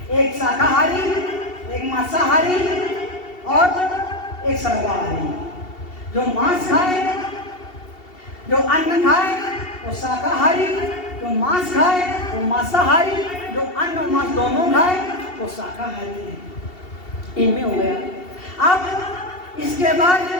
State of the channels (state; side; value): late; right; 2.7 ms